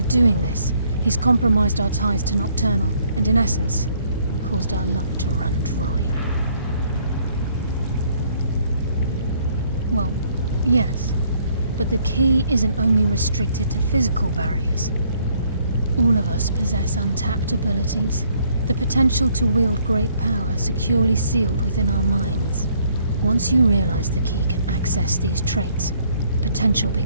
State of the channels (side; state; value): both; inverted; correlation -0.66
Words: doing this, he's compromised our ties to Nocturnal and, in essence, caused our luck to run dry. Well, yes, but the key isn't only restricted to physical barriers. All of us possess untapped abilities, the potential to wield great power securely sealed within our minds. Once you realize the key can access these traits, potential